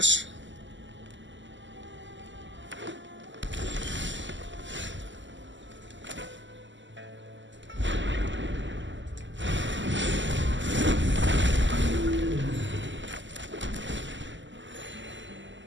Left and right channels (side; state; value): left; late; 0.54 ms